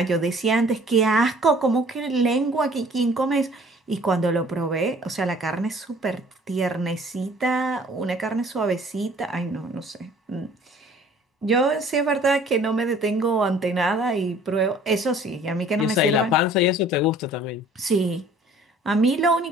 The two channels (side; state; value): both; normal; correlation 0.53